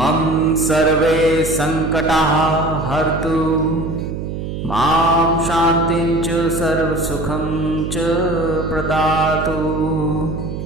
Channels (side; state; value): right; noise; hum, 6 dB below the sound